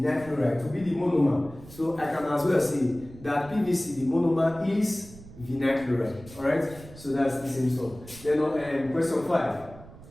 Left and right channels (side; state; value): right; noise; rumble, 18 dB below the sound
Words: chloride to be the monomer. So I can as well say that PVC, the monomer, is vinyl chloride. Alright? So that's the same stuff. Then question 5.